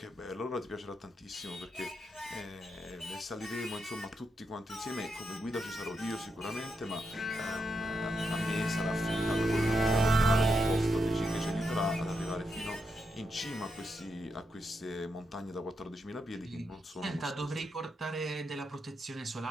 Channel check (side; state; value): both; normal; correlation 0.83